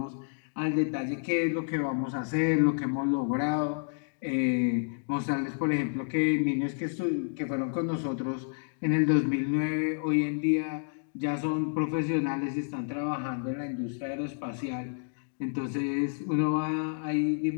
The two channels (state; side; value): silent; right; digital silence